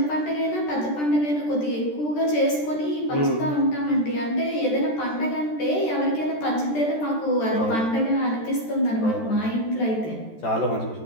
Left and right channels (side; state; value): right; late; 13 ms